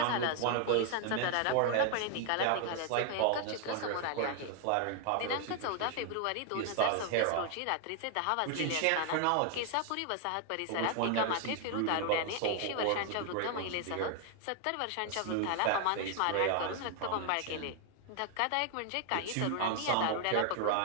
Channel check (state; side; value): different; both; correlation 0.00